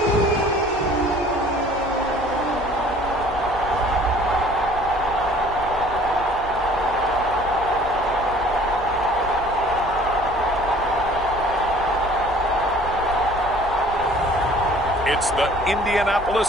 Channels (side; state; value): left; noise; hum, 16 dB below the sound